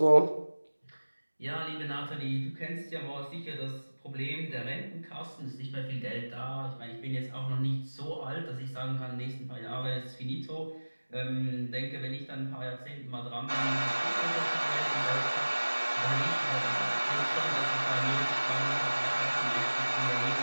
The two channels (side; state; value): both; inverted; correlation -1.00